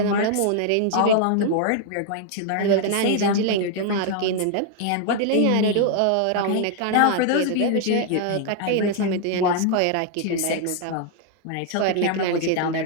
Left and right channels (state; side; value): different; both; correlation 0.00